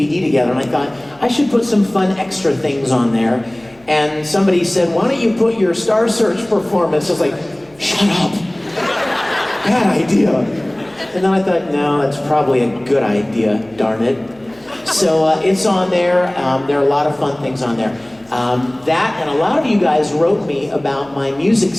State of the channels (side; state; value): left; noise; hum, 30 dB below the sound